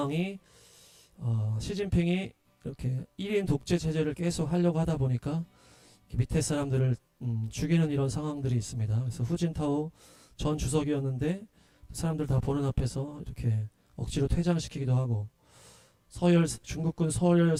시진핑이 이렇게 1인 독재 체제를 계속 하려고 하다 보니까 밑에 사람들을 죽이는 이런 상황들이 있습니다. 그래서 후진타오 전 주석이었는데 사람들 다 보는 앞에서 이렇게 억지로 퇴장시키기도 하고, 중국군 서열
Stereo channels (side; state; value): both; identical; correlation 1.00